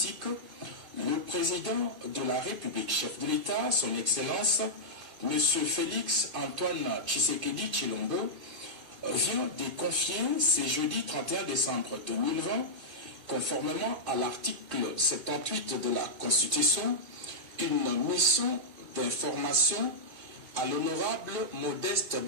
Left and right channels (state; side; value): late; left; 2.5 ms